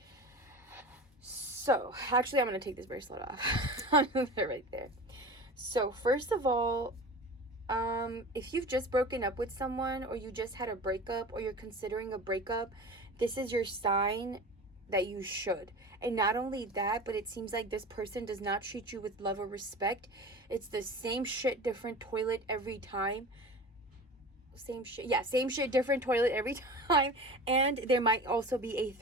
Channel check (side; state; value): both; normal; correlation 0.34